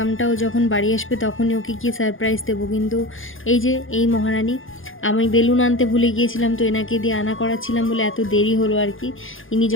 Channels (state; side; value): late; right; 0.58 ms